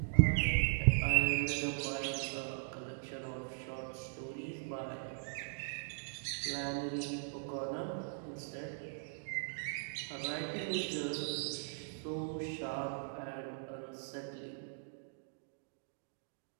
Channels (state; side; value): silent; left; digital silence